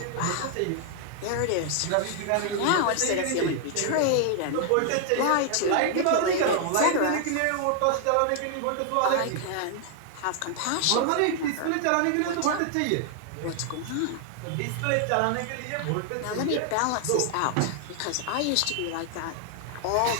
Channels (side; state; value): both; different; correlation 0.00